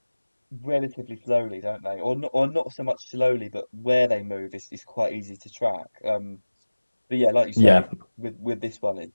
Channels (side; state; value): both; inverted; correlation -1.00